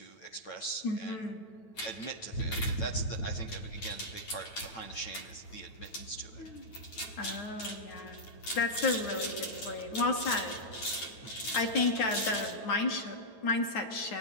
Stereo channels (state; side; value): late; right; 9.3 ms